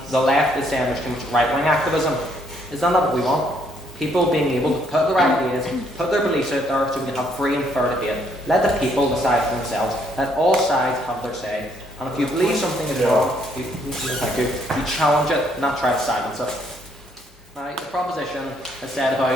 the left is saying there's too much right-wing activism, is that not what we want? People being able to put their ideas, put their beliefs out there so we can have free and fair debate. Let the people decide for themselves. Let all sides have their say. And if you believe something is wrong, you challenge it, not try to silence it. Now, the proposition has said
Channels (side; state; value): both; normal; correlation 0.69